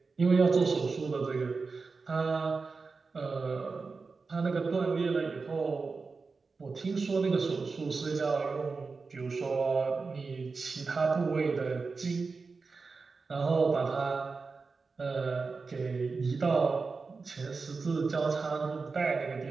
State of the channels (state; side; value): quieter; left; 4.4 dB